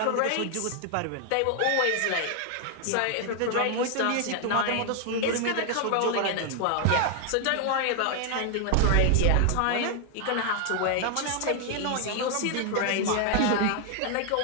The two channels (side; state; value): both; different; correlation 0.00